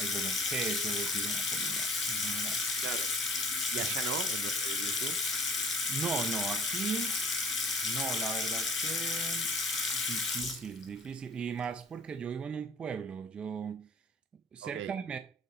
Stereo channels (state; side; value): normal; both; correlation 0.49